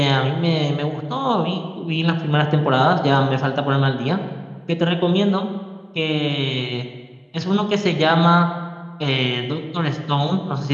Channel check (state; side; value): identical; both; correlation 1.00